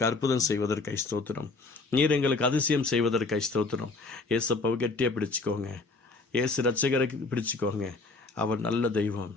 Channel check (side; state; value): right; quieter; 3.6 dB